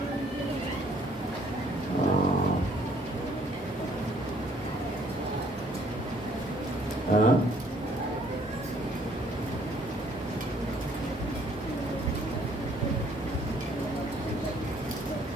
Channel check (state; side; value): normal; both; correlation 0.62